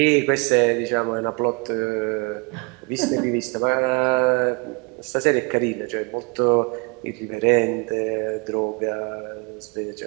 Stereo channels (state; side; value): quieter; left; 31.3 dB